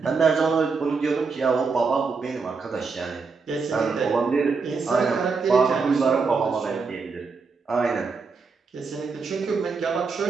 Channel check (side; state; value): left; quieter; 4.7 dB